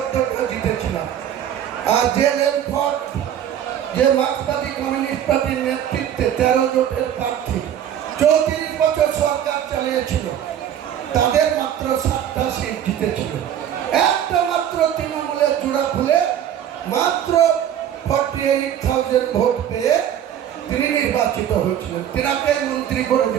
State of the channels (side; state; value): left; quieter; 10.1 dB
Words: জিতেছিলাম। আর যে লেনফোর্ড, যে মার্ক্সবাদী কমিউনিস্ট পার্টির নেতৃত্বে 13 জোটের প্রার্থী 34 বছর সরকার চালিয়েছিল, তাদের মাত্র 7টা সিট জিতেছিল। একটা মাত্র তৃণমূলের জোড়া খুলে মাত্র 48,000 ভোট পেয়ে তিনি নির্বাচিত হয়েছিলেন, তিনাকে মন্ত্রী করে